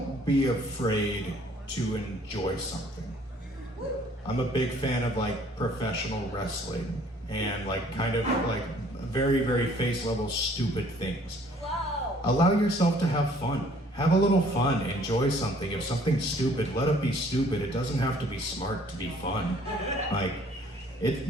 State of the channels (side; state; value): both; normal; correlation 0.58